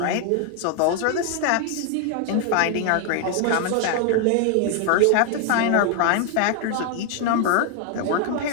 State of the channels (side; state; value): both; different; correlation 0.01